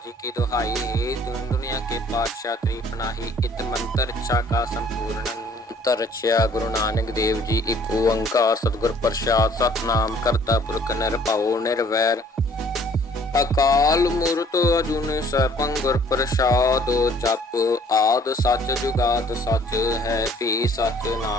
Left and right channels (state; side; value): normal; both; correlation 0.57